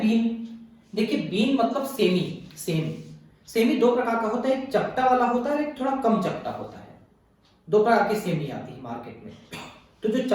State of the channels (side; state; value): both; identical; correlation 1.00